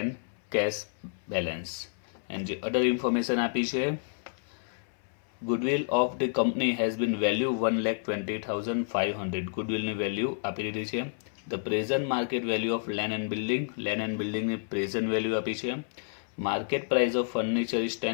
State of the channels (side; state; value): right; silent; 58 dB below the other